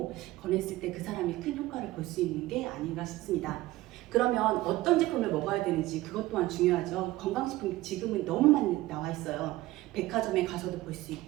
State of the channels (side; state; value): left; quieter; 17.5 dB